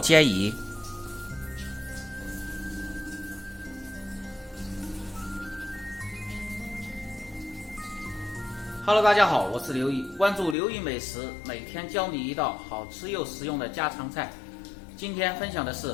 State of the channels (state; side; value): drops out; right; at 10.6 s